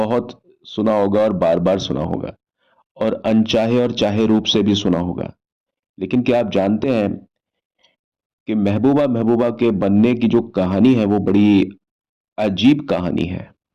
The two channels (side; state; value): both; identical; correlation 1.00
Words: सुना होगा और बार बार सुना होगा, और अनचाहे और चाहे रूप से भी सुना होगा। लेकिन क्या आप जानते हैं कि महबूबा महबूबा के बनने की जो कहानी है वो बड़ी अजीब कहानी है।